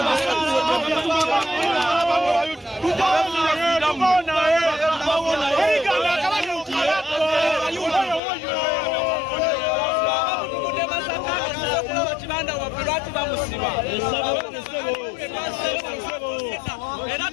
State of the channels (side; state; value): right; drops out; at 8.2 s